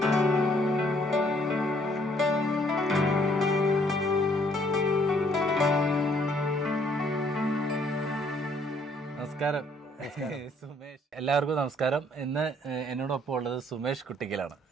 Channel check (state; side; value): normal; both; correlation 0.64